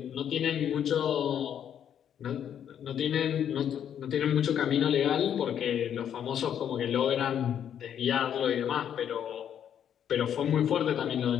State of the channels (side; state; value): right; quieter; 9.3 dB